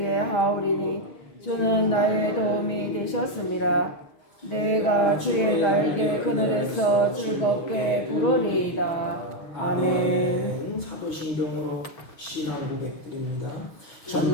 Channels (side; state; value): right; late; 6.3 ms